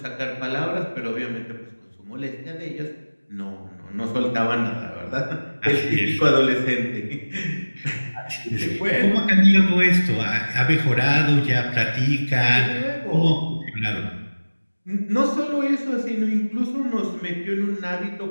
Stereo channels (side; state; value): both; inverted; correlation -1.00